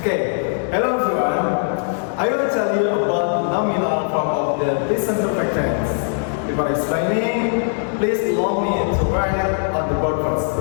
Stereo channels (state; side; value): silent; right; digital silence